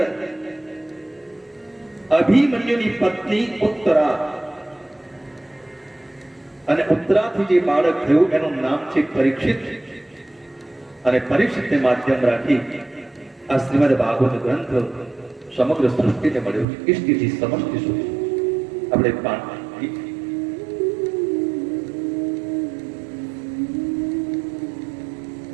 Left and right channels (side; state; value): left; drops out; at 16.7 s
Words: અભિમન્યુની પત્ની ઉત્તરા અને ઉત્તરાથી જે બાળક થયું એનું નામ છે પરીક્ષિત। અને પરીક્ષિતને માધ્યમ રાખી આ શ્રીમદ ભાગવત ગ્રંથ સમગ્ર સૃષ્ટિને મળ્યો છે, ઇષ્ટિથી સમષ્ટિ સુધી। આપણે